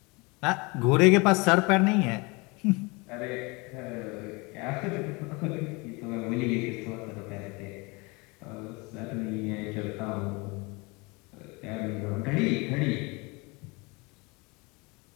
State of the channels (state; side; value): quieter; right; 27.2 dB